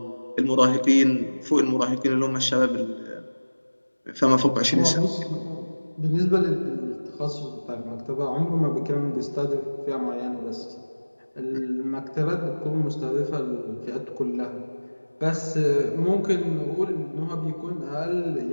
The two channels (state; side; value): inverted; both; correlation -1.00